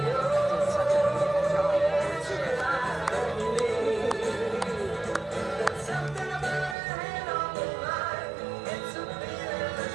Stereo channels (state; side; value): drops out; left; at 6.8 s